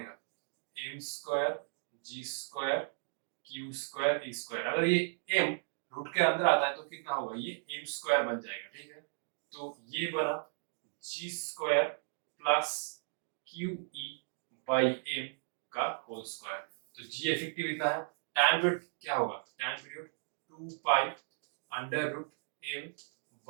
m square g square q square e square, अगर ये m रूट के अंदर आता है तो कितना होगा, ये m स्क्वायर बन जाएगा, ठीक है। तो ये बना g square plus QE by m का होल स्क्वायर, तो g इफेक्टिव इतना है। टाइम पीरियड क्या होगा, time period 2 pi under root m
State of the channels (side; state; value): left; silent; digital silence